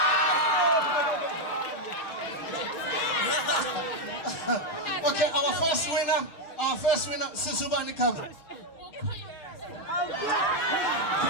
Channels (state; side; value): late; right; 6.7 ms